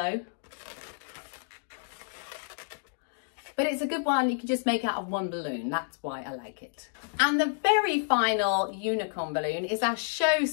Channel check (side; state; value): right; silent; digital silence